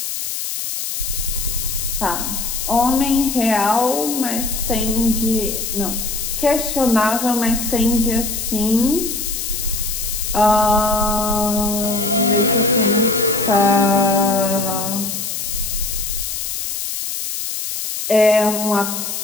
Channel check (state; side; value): noise; left; hiss, 4 dB below the sound